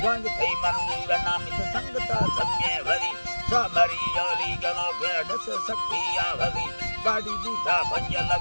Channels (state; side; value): inverted; both; correlation -1.00